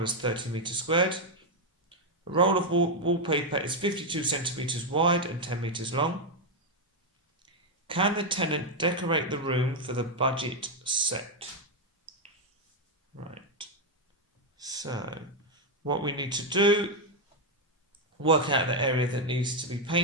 30 metres squared. A roll of wallpaper is 52 centimetres wide and 10 metres long. Can the tenant decorate the room for the budget set? Right. So, what we need to do, work out the area that needs to be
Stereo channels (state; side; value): normal; both; correlation 0.03